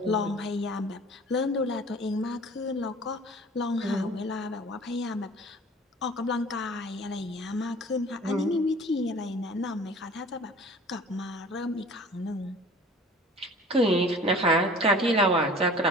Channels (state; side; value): normal; both; correlation 0.45